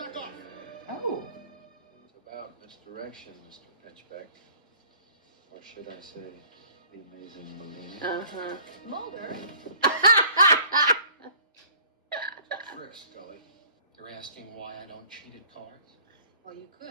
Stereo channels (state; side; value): inverted; both; correlation -0.52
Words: off. Oh. It's about misdirection, Mr. Pinchbeck. Or should I say, the amazing Malini. Uh-huh. Mulder. Trick, Scully. You're asking why I don't cheat at cards? Well, you